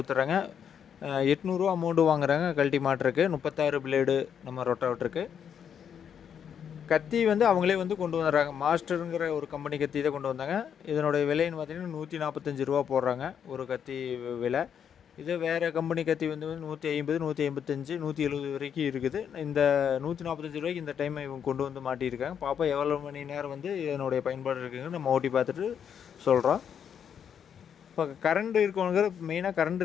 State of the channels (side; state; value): right; quieter; 8.1 dB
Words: 800 அமௌண்ட்டு வாங்குறாங்க கழட்டி மாட்டுறதுக்கு. 36 பிளேடு நம்ம ரொட்டாவேட்டருக்கு. கத்தி வந்து அவங்களே வந்து கொண்டு வந்துடுறாங்க. மாஸ்டருங்கிற ஒரு கம்பெனி கத்தி தான் கொண்டு வந்தாங்க. இதனுடைய விலைன்னு பார்த்தீங்கன்னா ₹145 போடுறாங்க ஒரு கத்தி விலை. இது வேறு கம்பெனி கத்தி வந்து 150, 155, 170 வரைக்கும் இருக்குது. இந்த ₹145 இந்த டைம் இவங்க கொண்டு வந்து மாட்டியிருக்காங்க. பார்ப்போம் எவ்வளோ மணி நேரம் வந்து இதனுடைய பயன்பாடு இருக்குதுன்னு நம்ம ஓட்டி பார்த்துட்டு சொல்கிறோம். இப்போ கரண்ட்